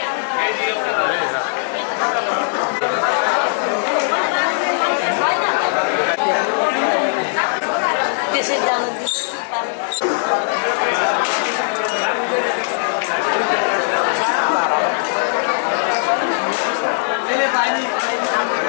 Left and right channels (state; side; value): silent; right; digital silence